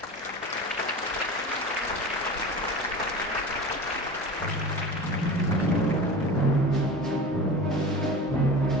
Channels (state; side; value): normal; both; correlation 0.33